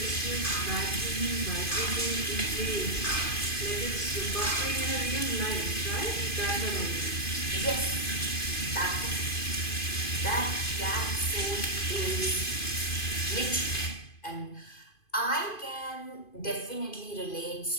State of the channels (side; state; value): right; late; 2.5 ms